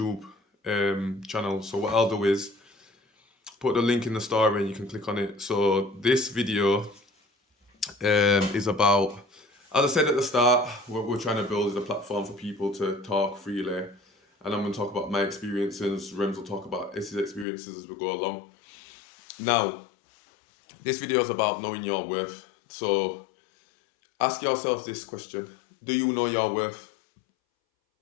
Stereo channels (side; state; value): right; drops out; at 17.4 s